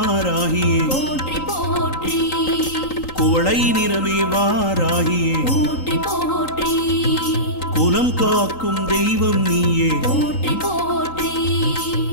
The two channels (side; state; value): right; late; 3.8 ms